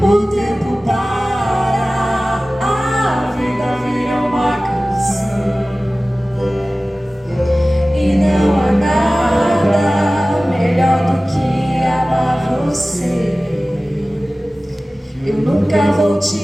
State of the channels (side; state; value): both; normal; correlation 0.97